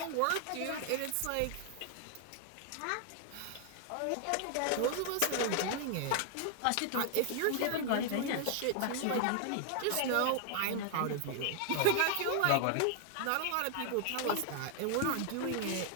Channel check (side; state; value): both; different; correlation 0.00